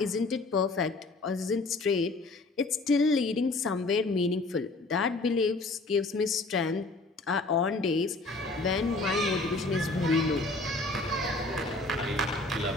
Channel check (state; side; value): quieter; right; 3.2 dB